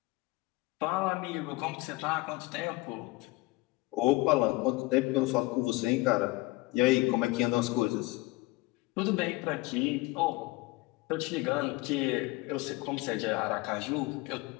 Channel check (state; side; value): quieter; right; 21.9 dB